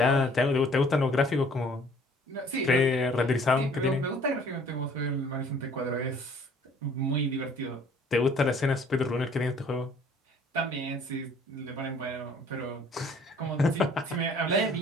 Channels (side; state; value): both; normal; correlation 0.56